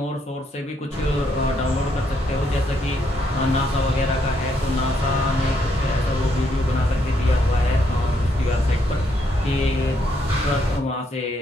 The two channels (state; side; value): normal; both; correlation 0.74